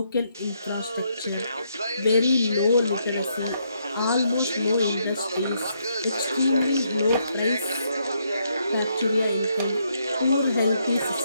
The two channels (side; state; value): both; inverted; correlation -0.76